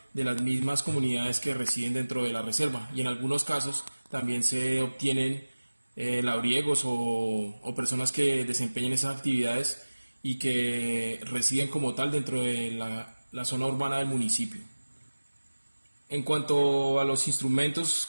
de las mismas comunidades que residen dentro de la reserva, y en algunos casos también se obtienen labriegos o personas que desempeñen esas actividades y que residen como tal dentro de la zona urbana del municipio. En cuanto a los instrumentos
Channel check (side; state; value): both; inverted; correlation -1.00